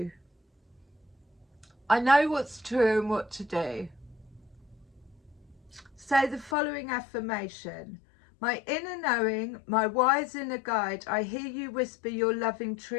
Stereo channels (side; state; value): right; drops out; at 6.6 s